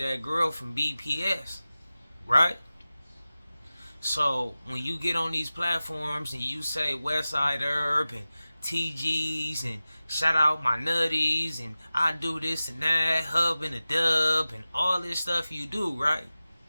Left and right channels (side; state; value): both; inverted; correlation -0.96